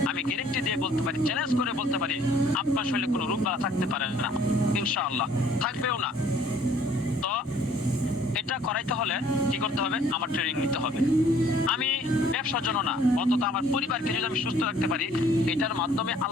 আমি গ্যারান্টি দিয়ে বলতে পারি, চ্যালেঞ্জ করে বলতে পারি, আপনার শরীরে কোনো রোগ বালা থাকতে পারে না ইনশাআল্লাহ, থাকবেও না। তো এটা করাইতে হলে কি করতে হবে? আমার ট্রেনিং নিতে হবে। আমি ব্যবসার জন্য না, অন্তত আমার পরিবারকে যদি আমি সুস্থ রাখতে পারি, এটার মাধ্যমে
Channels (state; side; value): normal; both; correlation 0.58